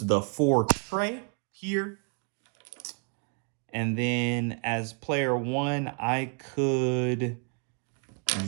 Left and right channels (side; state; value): left; quieter; 36.8 dB